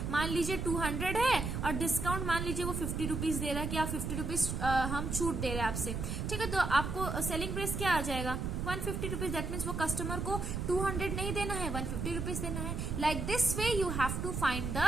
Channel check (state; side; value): noise; right; rumble, 3 dB below the sound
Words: मान लीजिए 200 है और डिस्काउंट मान लीजिए वो 50 रुपीज दे रहा है कि आप 50 रुपीज हम छूट दे रहे हैं आपसे, ठीक है। तो आपको सेलिंग प्राइस क्या आ जाएगा 150 रुपीज। दैट मीन्स वो कस्टमर को 200 नहीं देना है, 150 रुपीज देना है। Like this way you have to find